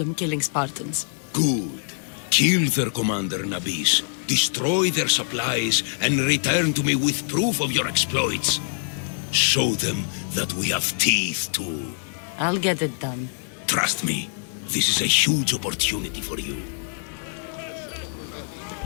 killing Spartans. Good. Kill their commander Nabis, destroy their supplies, and return to me with proof of your exploits. Show them that we have teeth too. I'll get it done. Trust me, this is a huge opportunity for you.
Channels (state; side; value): silent; right; digital silence